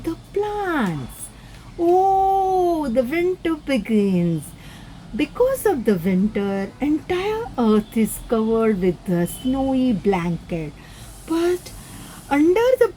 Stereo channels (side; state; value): both; identical; correlation 1.00